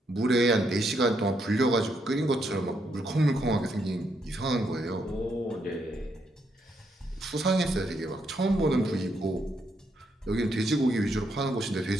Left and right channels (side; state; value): both; normal; correlation 0.77